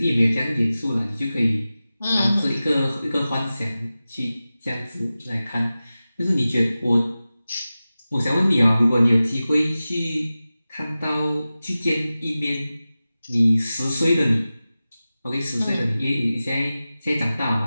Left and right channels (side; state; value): both; inverted; correlation -0.95